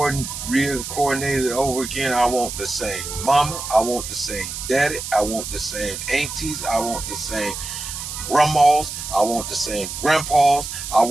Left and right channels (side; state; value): right; noise; hiss, 7 dB below the sound